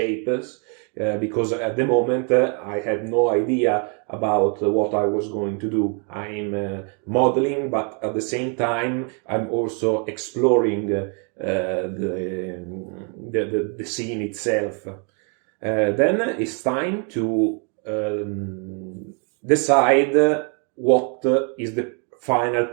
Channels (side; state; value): left; quieter; 38.4 dB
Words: because at the moment I had no idea about what I was going to do. I'm modeling, but at the same time I'm also exploring the scene itself. Then it's time to decide what is the final